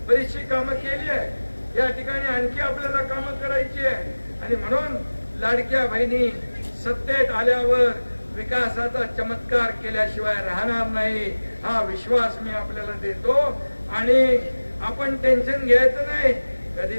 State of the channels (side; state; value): both; inverted; correlation -1.00